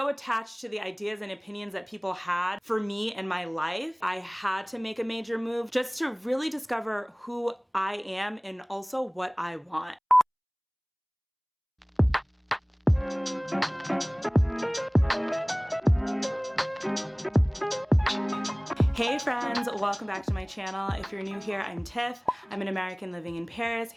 attached to the ideas and opinions that people had for me in my life, I had to make a major move just to really discover who I am and also what I want. Hey friends, welcome back to my channel. If you're new here, I'm Tiff. I'm an American living in Paris,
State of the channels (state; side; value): identical; both; correlation 1.00